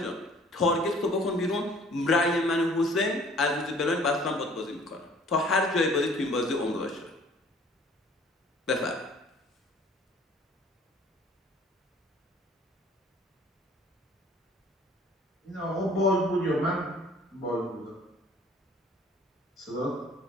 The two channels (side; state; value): both; normal; correlation 0.54